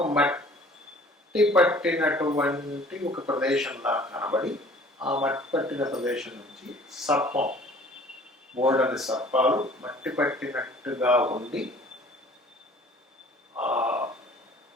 మట్టి పట్టినటువంటి ఒక ప్రదేశంలా కనబడి, ఆ మట్టి పట్టిన ప్రదేశం నుంచి సర్పం, బోల్డని సర్పాలు మట్టి పట్టినట్టుగా ఉండి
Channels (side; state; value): both; normal; correlation 0.51